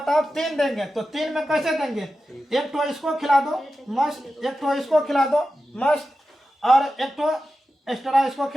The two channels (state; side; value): normal; both; correlation 0.92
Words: 3 देंगे तो 3 में कैसे देंगे? एक तो इसको खिला दो मस्त, एक तो इसको खिला दो मस्त, और एक तो एक्स्ट्रा इसको